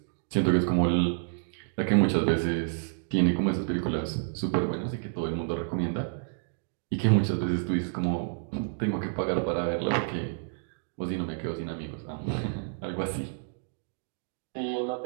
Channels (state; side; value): silent; left; digital silence